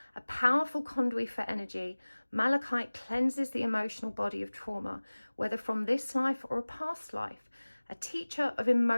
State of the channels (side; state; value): both; inverted; correlation -1.00